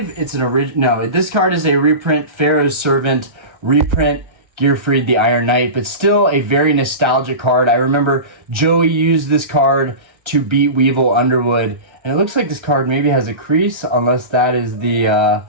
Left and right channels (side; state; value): left; late; 1.3 ms